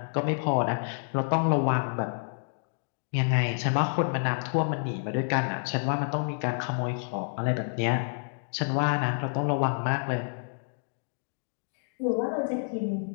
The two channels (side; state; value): right; silent; digital silence